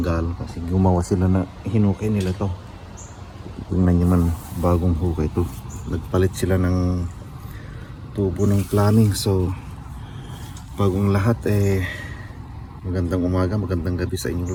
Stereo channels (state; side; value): identical; both; correlation 1.00